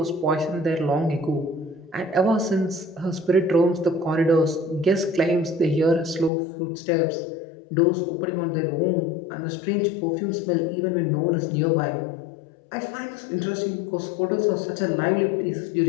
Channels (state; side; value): drops out; right; at 6.3 s